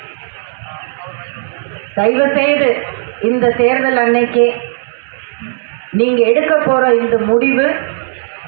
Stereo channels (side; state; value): left; silent; digital silence